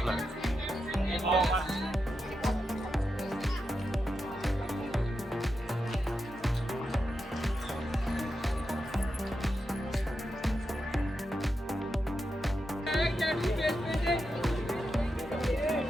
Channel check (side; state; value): both; normal; correlation 0.87